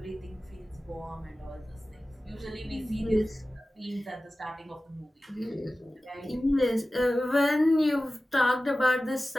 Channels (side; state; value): both; normal; correlation 0.96